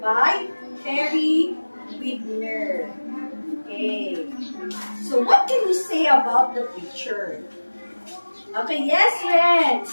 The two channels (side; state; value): both; inverted; correlation -1.00